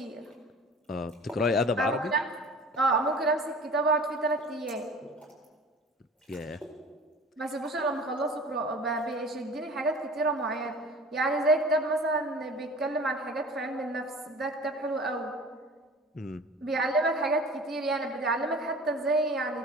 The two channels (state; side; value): normal; both; correlation 0.43